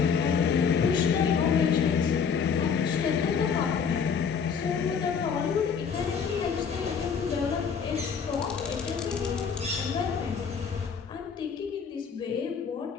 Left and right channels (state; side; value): quieter; right; 6.4 dB